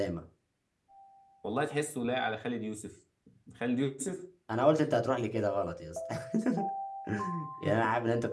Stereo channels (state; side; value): identical; both; correlation 1.00